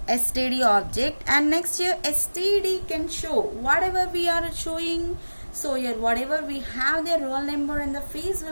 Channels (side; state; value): both; inverted; correlation -1.00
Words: object, and next here std can show whatever we are showing. So here whatever we have, the roll number and the phase